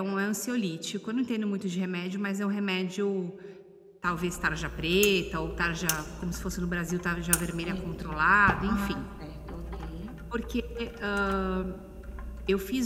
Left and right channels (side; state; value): both; identical; correlation 1.00